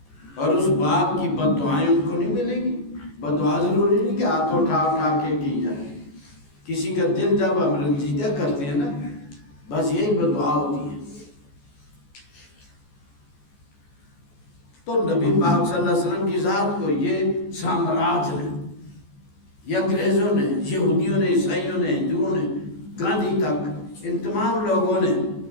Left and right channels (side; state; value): right; late; 14 ms